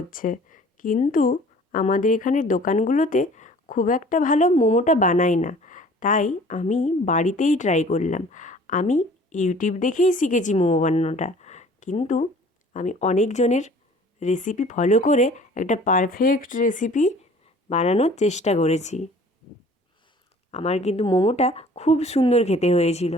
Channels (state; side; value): normal; both; correlation 0.50